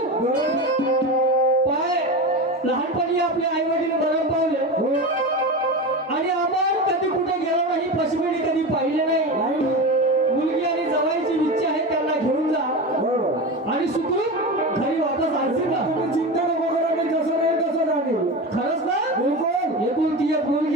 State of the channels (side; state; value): both; normal; correlation 0.24